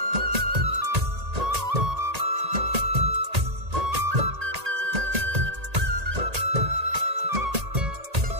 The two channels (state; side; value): late; left; 1.8 ms